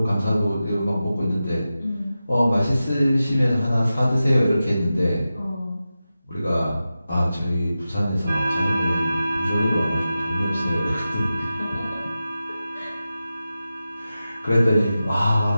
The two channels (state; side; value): inverted; both; correlation -0.93